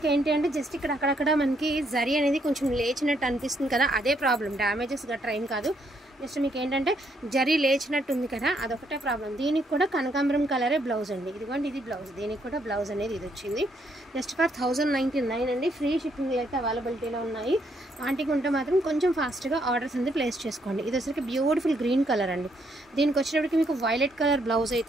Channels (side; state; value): both; normal; correlation 0.73